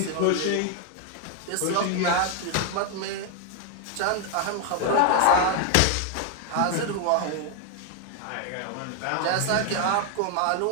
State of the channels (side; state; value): both; different; correlation 0.00